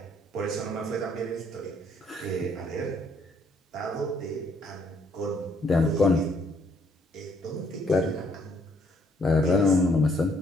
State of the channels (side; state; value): both; normal; correlation 0.67